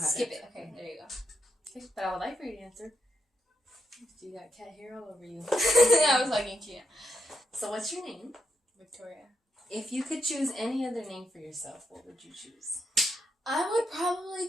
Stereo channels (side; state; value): both; normal; correlation 0.81